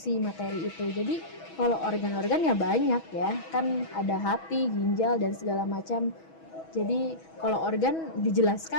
materi itu. Jadi kalau organ-organ ya banyak ya, kan ada hati, ginjal dan segala macam. Jadi kalau organ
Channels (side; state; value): right; late; 6.2 ms